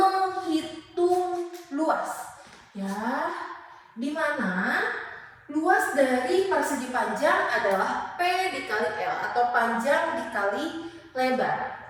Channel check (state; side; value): identical; both; correlation 1.00